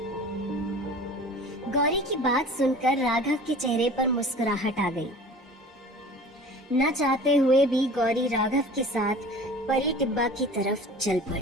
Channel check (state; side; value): normal; both; correlation 0.42